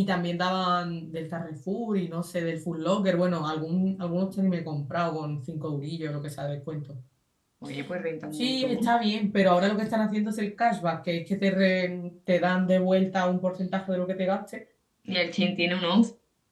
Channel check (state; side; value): identical; both; correlation 1.00